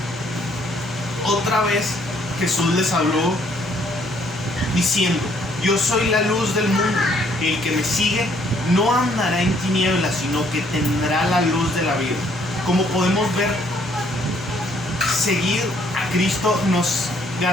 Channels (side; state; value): both; normal; correlation 0.66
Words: otra vez Jesús les habló diciendo, yo soy la luz del mundo, el que me sigue no andará en tinieblas, sino que tendrá la luz de la vida. Como podemos ver, seguir a Cristo nos